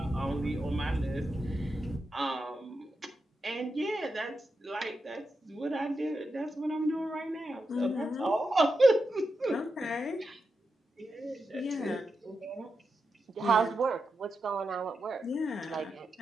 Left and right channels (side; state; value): both; normal; correlation 0.88